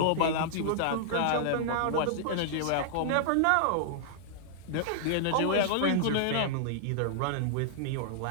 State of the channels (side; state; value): both; different; correlation -0.01